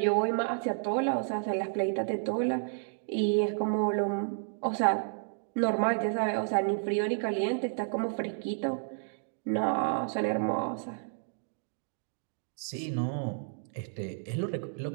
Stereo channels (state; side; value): silent; left; digital silence